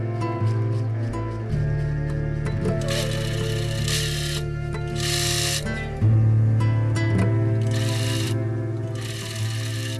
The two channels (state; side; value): identical; both; correlation 1.00